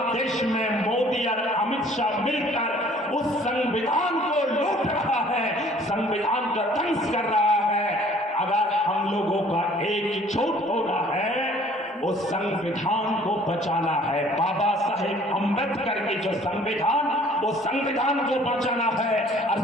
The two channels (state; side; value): normal; both; correlation 0.55